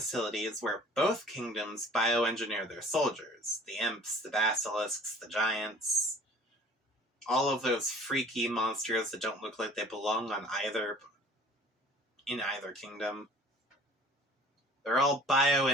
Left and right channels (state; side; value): normal; both; correlation 0.49